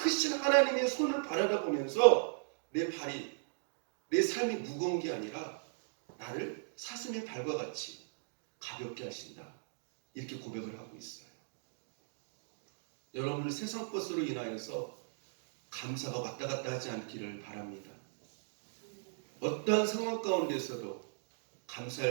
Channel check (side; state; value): left; silent; digital silence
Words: 하나님의 손을 바라보면서 내 발이, 내 삶이 무거운 게 아니라 나를 사슴의 발과 같이 가볍게 하신다, 이렇게 고백을 하고 있어요. 여러분들 세상 것으로 인하여서 감사가 왔다 갔다 하지 않기를 바랍니다. 어떠한 상황 가운데서도